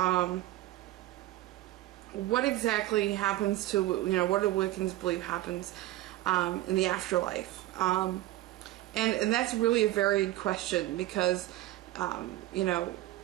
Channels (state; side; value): quieter; left; 16.1 dB